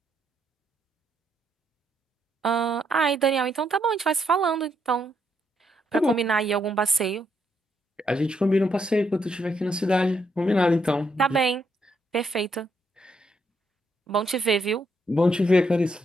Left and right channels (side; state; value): both; normal; correlation 0.76